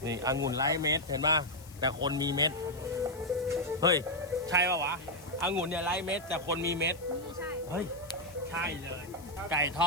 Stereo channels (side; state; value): left; noise; hiss, 21 dB below the sound